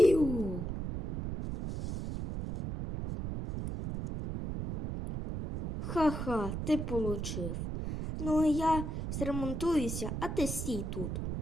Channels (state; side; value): noise; right; rumble, 4 dB below the sound